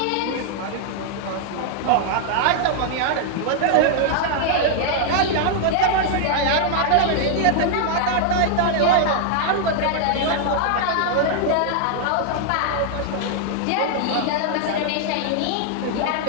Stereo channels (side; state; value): both; different; correlation 0.00